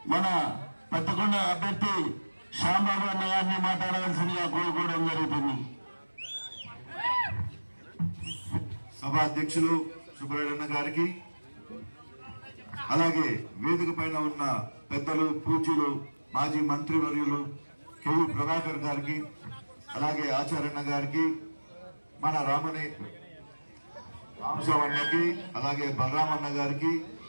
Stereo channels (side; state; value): both; inverted; correlation -1.00